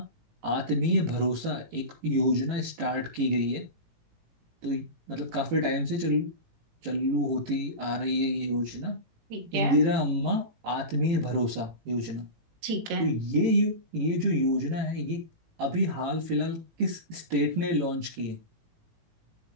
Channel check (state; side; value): late; left; 18 ms